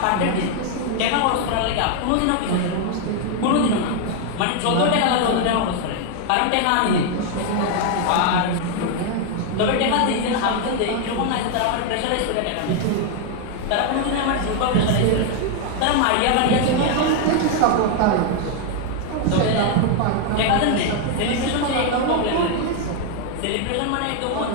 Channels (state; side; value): different; both; correlation 0.00